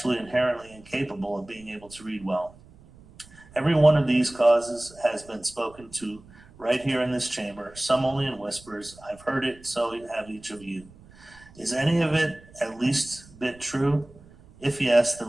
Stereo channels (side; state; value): right; noise; rumble, 24 dB below the sound